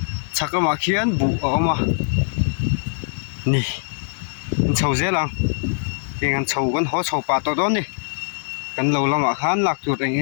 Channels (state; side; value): silent; right; digital silence